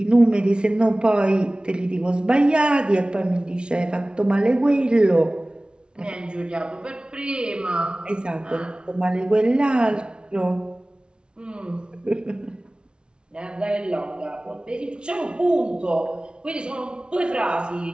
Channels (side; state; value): left; late; 0.056 ms